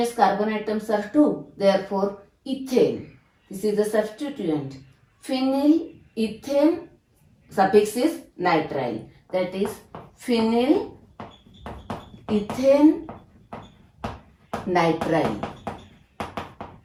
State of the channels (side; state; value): both; identical; correlation 1.00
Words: carbon atoms are 2. Therefore ethane. This is the substituent. Phenyl ethane suffix is nitrile. That is phenyl ethane nitrile.